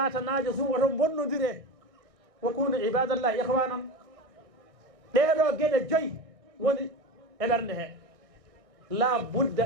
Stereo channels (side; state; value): left; late; 1.6 ms